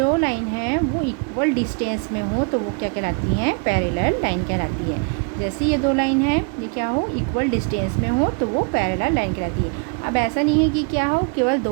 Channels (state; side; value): quieter; left; 36.6 dB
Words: लाइन है वो इक्वल डिस्टेंस में हो तो वो क्या कहलाती हैं, पैरेलल लाइन कहलाती है। जैसे ये दो लाइन है, ये क्या हो, इक्वल डिस्टेंस में हो तो वो पैरेलल लाइन कहलाती है। अब ऐसा नहीं है कि क्या हो, केवल